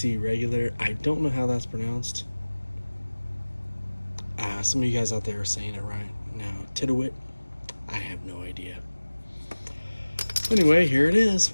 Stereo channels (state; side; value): inverted; both; correlation -1.00